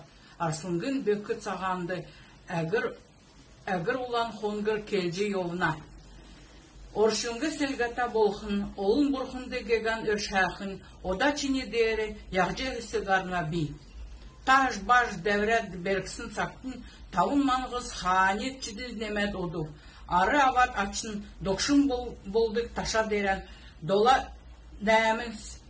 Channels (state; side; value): identical; both; correlation 1.00